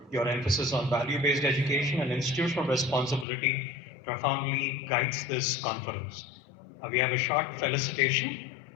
Your emphasis on value-based education and institutional responsibility profoundly guides this conference. We have a short felicitation.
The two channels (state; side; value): drops out; right; at 3.2 s